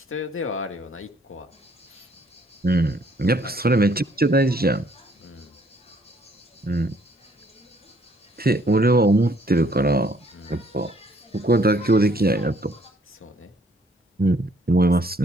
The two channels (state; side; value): normal; both; correlation 0.64